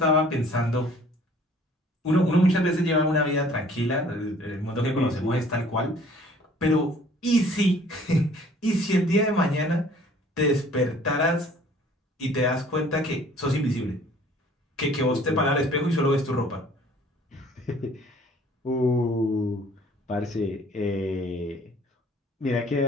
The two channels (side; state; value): both; normal; correlation 0.54